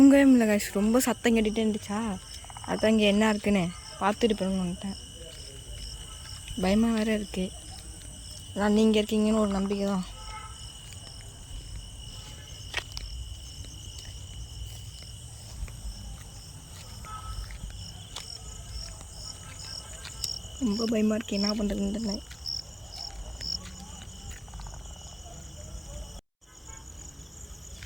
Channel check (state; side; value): identical; both; correlation 1.00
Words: முடியல கைஸ். ரொம்ப சத்தம் கேட்டுகிட்டே இருந்துச்சா, அதான் இங்கே என்ன இருக்குன்னு பார்த்துட்டு போகணும்னு வந்துட்டேன். பயமாக வேறு இருக்குது. அதான் நீங்கள் இருக்கீங்கன்னு ஒரு நம்பிக்கை தான். ரொம்ப பயமாக இருக்குது, என்ன பண்ணுறதுன்னு தெரியல.